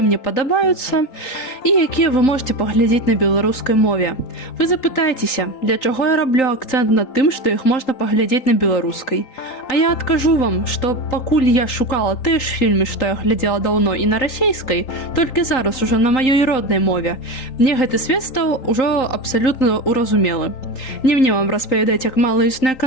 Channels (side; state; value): right; late; 3.8 ms